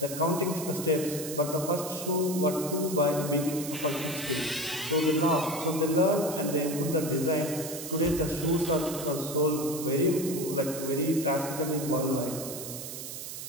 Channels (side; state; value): right; noise; hiss, 8 dB below the sound